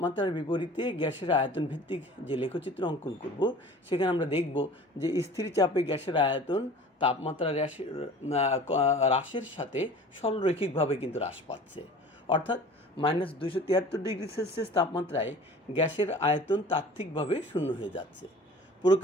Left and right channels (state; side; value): normal; both; correlation 0.43